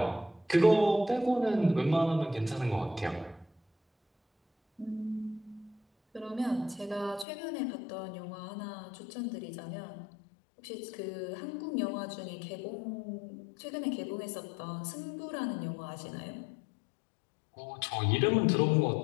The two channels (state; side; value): drops out; right; at 7.2 s